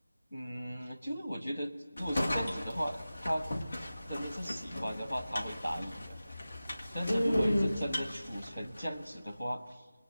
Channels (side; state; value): both; inverted; correlation -0.95